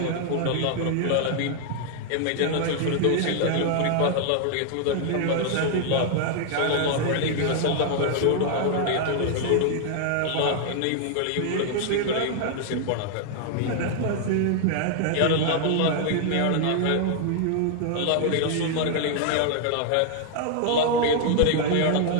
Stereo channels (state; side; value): different; both; correlation 0.00